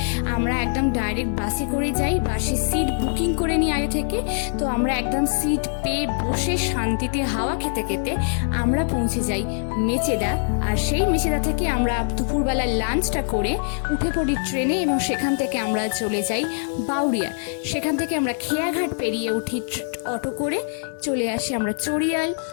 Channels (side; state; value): right; silent; digital silence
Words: আমরা একদম ডাইরেক্ট বাসে করে যাই। বাসে সিট বুকিং করে নিই আগে থেকে, তো আমরা একদম সিট পেয়ে বসে শান্তিতে হাওয়া খেতে খেতে আমরা পৌঁছে যাই মেচেদা। আর সেই মেচেদা থেকে আমরা দুপুরবেলা লাঞ্চটা করে উঠে পড়ি ট্রেনে এবং সেখান থেকে আমরা চলে যাই বাউরিয়া। সেখান থেকে আমরা খেয়াঘাট পেরিয়ে উঠি অটো করে, চলে আসি আমরা চড়িয়াল।